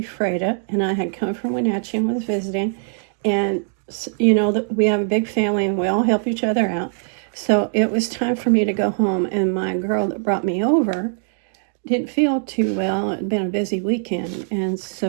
and I had come from Wenatchee and was visiting, and you know, we have a big family and we all help each other out. So it was time for me to go home, and my girl that brought me over didn't feel too well. It had been a busy weekend, and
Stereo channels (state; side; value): silent; left; digital silence